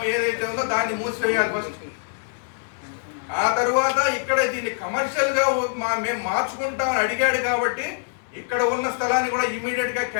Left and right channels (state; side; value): silent; right; digital silence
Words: ఏదైతే ఉందో దాన్ని మూసివేయాలి ఫస్ట్. ఆ తర్వాత ఇక్కడ దీన్ని కమర్షియల్ గా మేము మార్చుకుంటామని అడిగాడు కాబట్టి ఇక్కడ ఉన్న స్థలాన్ని కూడా ఇమీడియట్ గా